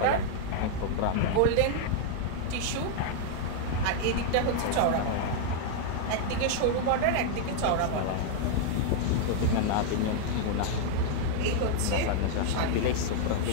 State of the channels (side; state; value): both; different; correlation 0.00